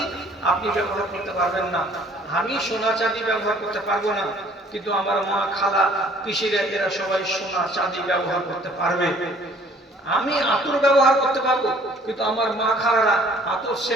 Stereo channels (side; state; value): both; normal; correlation 0.56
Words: আপনি ব্যবহার করতে পারবেন না, আমি সোনা চাঁদি ব্যবহার করতে পারবো না, কিন্তু আমার মা, খালা, পিসিরা এরা সবাই সোনা চাঁদি ব্যবহার করতে পারবে। আমি আতর ব্যবহার করতে পারবো, কিন্তু আমার মা খালারা আতর